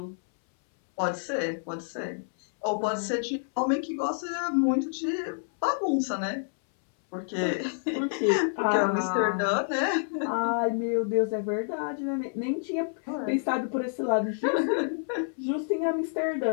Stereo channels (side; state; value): right; silent; 59 dB below the other